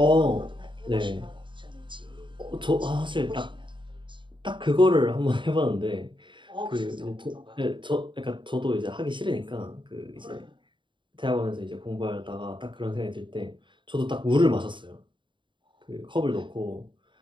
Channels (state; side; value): late; left; 0.23 ms